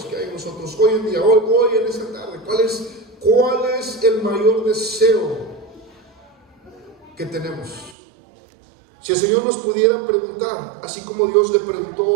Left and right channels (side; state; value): left; drops out; at 8.0 s